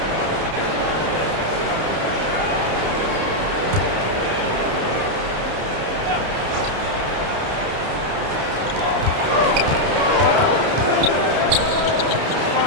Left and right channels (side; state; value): left; late; 30 ms